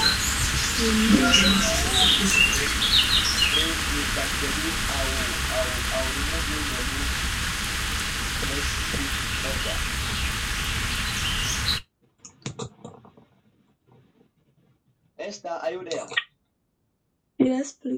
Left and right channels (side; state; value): both; identical; correlation 1.00